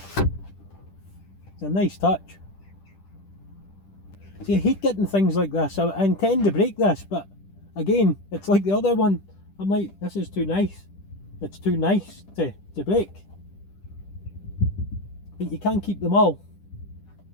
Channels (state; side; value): late; right; 10 ms